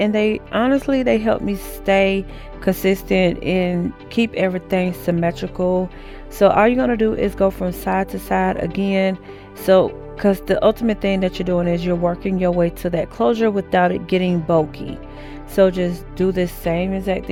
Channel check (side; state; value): both; identical; correlation 1.00